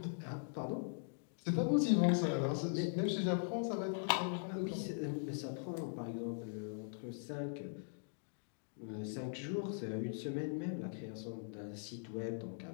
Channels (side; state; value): right; silent; digital silence